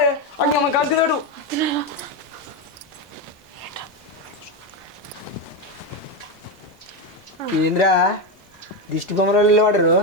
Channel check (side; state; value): both; normal; correlation 0.11